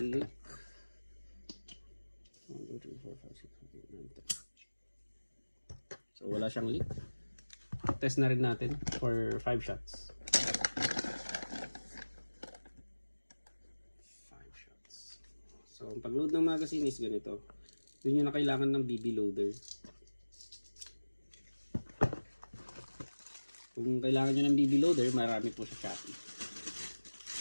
1, 2, 3, 4, 5, 6, 7, 8, 9, 10. So wala siyang leak. Test na rin natin for 5 shots. 5 shots. So, ang pag-load ng magazine is ganito. Yun yung na kailangan ng BB loader. Kung kailangan nyo ng BB loader, marami po sa Shopee.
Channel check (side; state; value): both; inverted; correlation -1.00